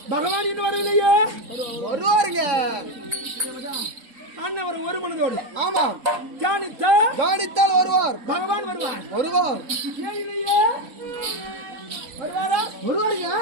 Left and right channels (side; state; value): left; late; 3.6 ms